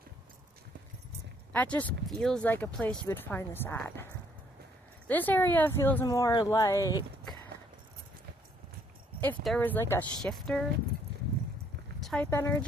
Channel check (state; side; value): normal; both; correlation 0.66